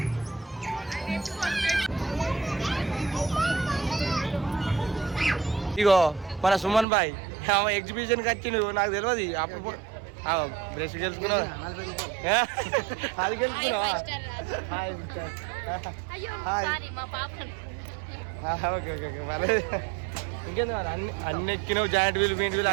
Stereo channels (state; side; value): drops out; left; at 6.9 s